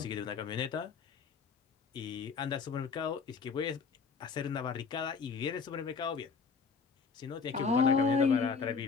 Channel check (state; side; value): quieter; right; 5.4 dB